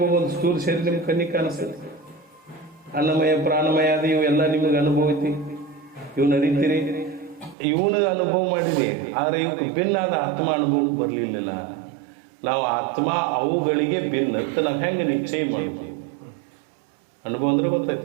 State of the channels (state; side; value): drops out; left; at 7.6 s